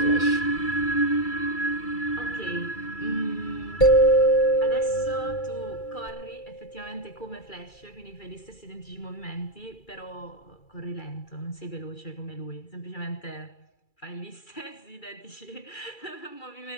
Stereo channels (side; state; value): right; late; 2.3 ms